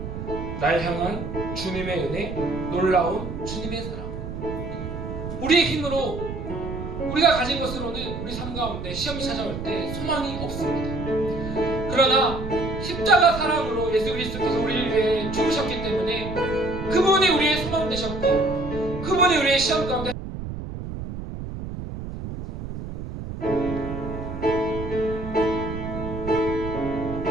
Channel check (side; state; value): right; noise; rumble, 7 dB below the sound